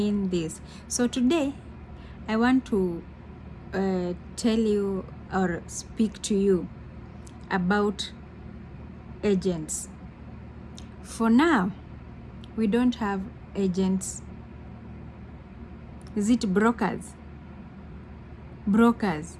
this. So today I want to tell you or speak to you about agents. For now, we don't have agents. Is it brokers? Brokers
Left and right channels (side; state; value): both; identical; correlation 1.00